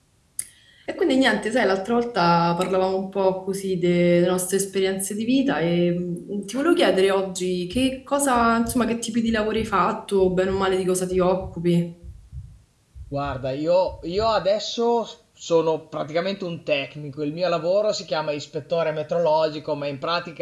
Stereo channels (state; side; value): identical; both; correlation 1.00